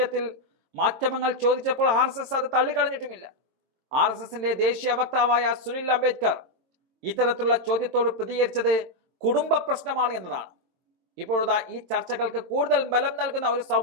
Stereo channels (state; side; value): late; left; 22 ms